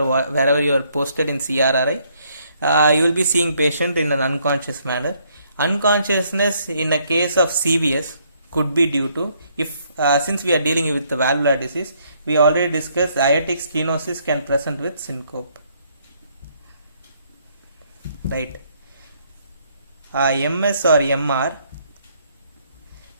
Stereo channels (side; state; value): both; inverted; correlation -0.69